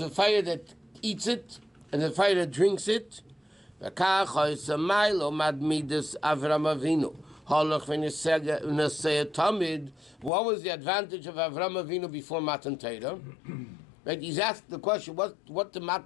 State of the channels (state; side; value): drops out; right; at 10.3 s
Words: a fire that eats it and a fire that drinks it. What was the advantage of Avram Avinu before Matan Torah? Right? He's asked the question, what did